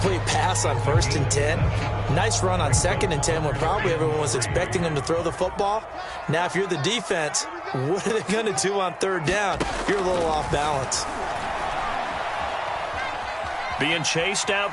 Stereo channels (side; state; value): both; identical; correlation 1.00